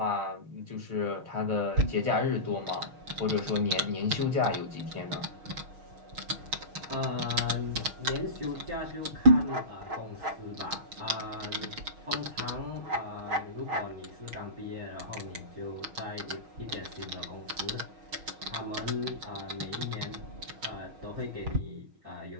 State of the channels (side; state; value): left; late; 6.4 ms